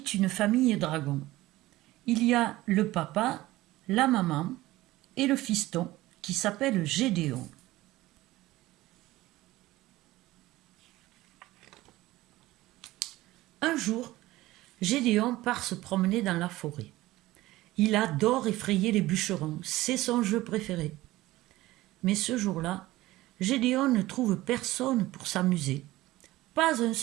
une famille dragons. Il y a le papa, la maman et le fiston qui s'appelle Gédéon. Un jour, Gédéon part se promener dans la forêt. Il adore effrayer les bûcherons, c'est son jeu préféré. Mais ce jour-là, Gédéon ne trouve personne pour s'amuser. Pas un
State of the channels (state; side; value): quieter; left; 17.6 dB